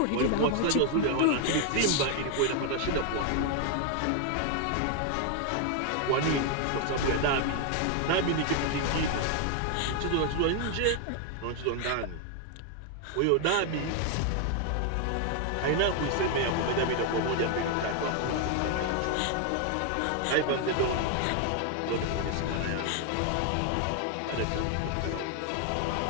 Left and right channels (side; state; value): both; different; correlation 0.00